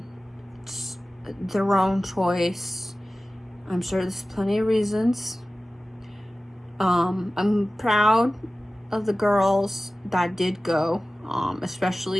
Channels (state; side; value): normal; both; correlation 0.96